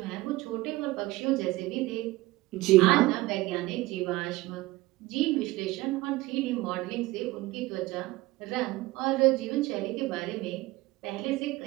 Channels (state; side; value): quieter; left; 19.4 dB